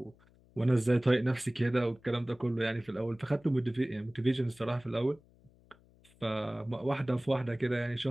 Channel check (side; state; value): left; noise; hum, 29 dB below the sound